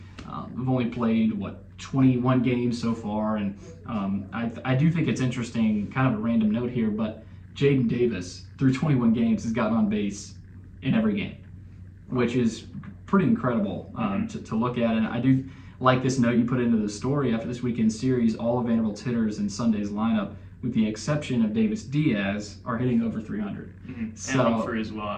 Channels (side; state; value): both; identical; correlation 1.00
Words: We've only played, 21 games so far, and I do think it's interesting, kind of a random note here, but Jaden Davis, through 21 games, has gotten on base in every game, which is pretty incredible to look at. And I do like this note you put into the story. After this weekend's series, all of Vanderbilt's hitters in Sunday's lineup, with the exception of Davis Diaz, are hitting over 300. So, and Humphrey as